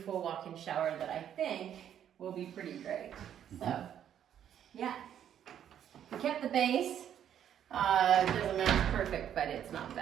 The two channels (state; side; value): quieter; left; 9.8 dB